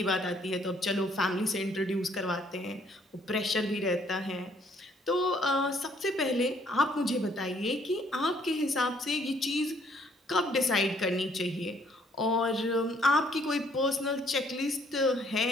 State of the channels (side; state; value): both; normal; correlation 0.65